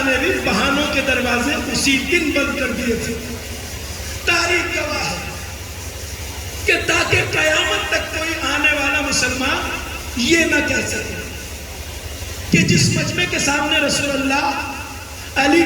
نے بھی بہانوں کے دروازے اسی دن بند کر دیے تھے. تاریخ گواہ ہے کہ تاکہ قیامت تک کوئی آنے والا مسلمان یہ نہ کہہ سکے کہ جس مجمع کے سامنے رسول اللہ علی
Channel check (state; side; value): identical; both; correlation 1.00